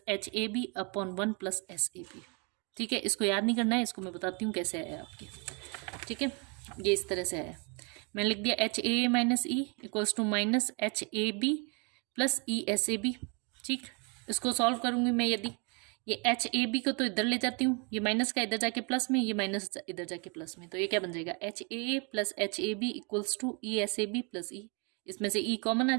HAB upon 1 plus SAB। ठीक है, इसको याद नहीं करना है, इसको मैं बताती हूँ कैसे आया आपके। ठीक है, ये इस तरह से आया, मैंने लिख दिया HAA minus E equals to minus HAB plus ESAB। ठीक, इसको सॉल्व करूँगी मैं, यदि ये HAB को तो इधर ले जाती हूँ, ये माइनस का इधर जाके प्लस में, ये माइनस इधर जाके प्लस में, तो ये क्या बन जाएगा, HAA plus HAB equals to ESAB plus E, इसमें से E कॉमन आ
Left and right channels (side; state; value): left; quieter; 33.8 dB